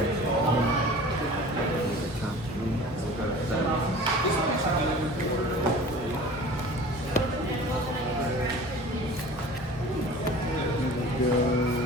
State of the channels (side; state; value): both; normal; correlation 0.42